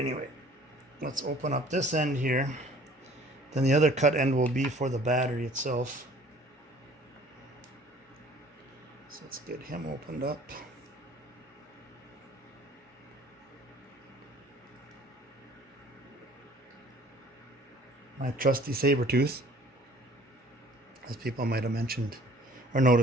let's open up this end here. Then the other cut end will be for the battery itself. So let's get him opened up. My trusty saber tooth, as people might have mentioned or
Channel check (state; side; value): normal; both; correlation 0.53